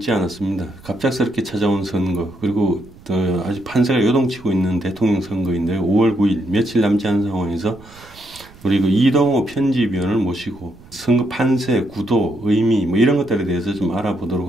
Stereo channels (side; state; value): right; noise; rumble, 23 dB below the sound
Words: 않았습니다. 갑작스럽게 찾아온 선거, 그리고 아직 판세가 요동치고 있는 대통령 선거인데 5월 9일 며칠 남지 않은 상황에서 우리 그 이동호 편집위원을 모시고 선거 판세, 구도, 의미 뭐 이런 것들에 대해서 좀 알아보도록